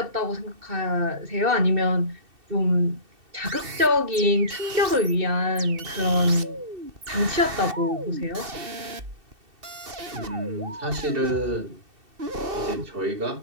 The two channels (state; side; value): late; left; 2.7 ms